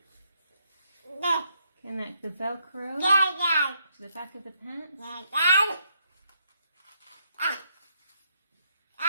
Connect the Velcro to the back of the pants.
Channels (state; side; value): inverted; both; correlation -0.74